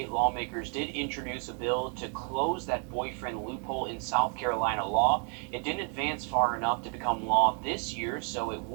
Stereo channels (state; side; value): quieter; left; 39.9 dB